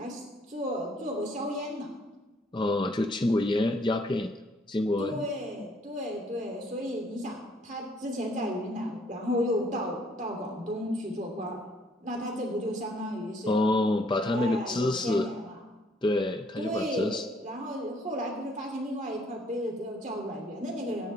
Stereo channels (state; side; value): normal; both; correlation 0.65